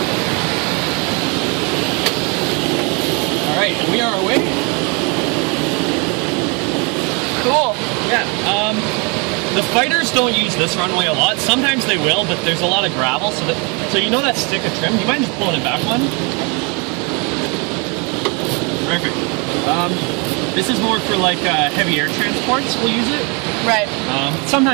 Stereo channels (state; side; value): quieter; left; 32.0 dB